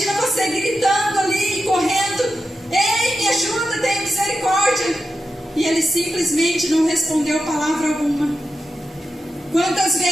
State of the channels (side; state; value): both; normal; correlation 0.89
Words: você gritando ali, correndo. Ei, me ajuda, tenha misericórdia. E ele simplesmente não respondeu palavra alguma. Quantas